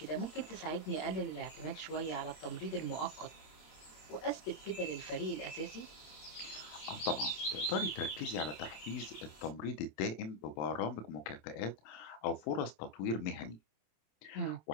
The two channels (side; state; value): right; late; 26 ms